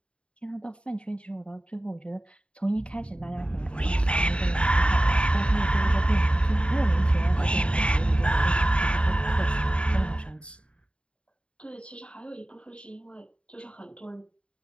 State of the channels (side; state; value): right; late; 0.057 ms